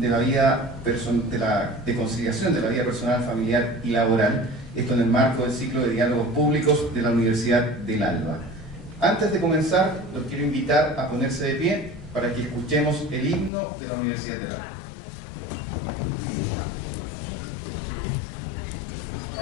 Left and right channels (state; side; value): drops out; right; at 13.5 s